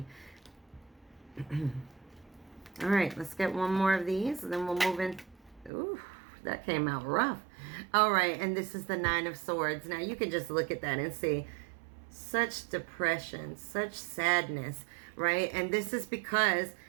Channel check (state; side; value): drops out; left; at 5.7 s